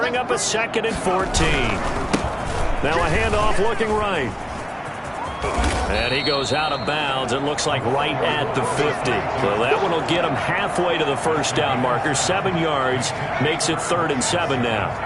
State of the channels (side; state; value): both; identical; correlation 1.00